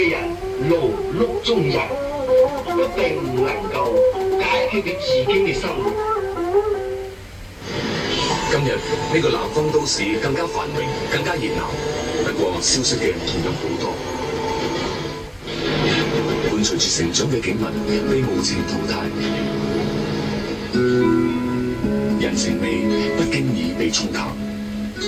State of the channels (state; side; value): identical; both; correlation 1.00